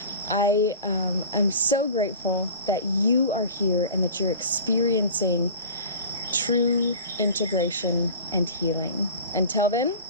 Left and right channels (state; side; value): inverted; both; correlation -0.38